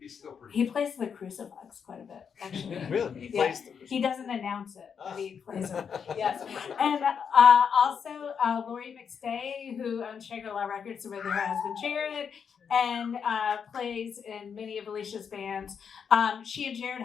still pretty. He plays the crucifix quite a bit, actually. Really? He plays the crucifix. He doesn't announce it, but he plays it. Yes. And also Lori McStay, who owns Shangri-La Records with her husband Jared, and plays in many of Alicia's bands. She and Jared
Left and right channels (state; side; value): quieter; right; 6.9 dB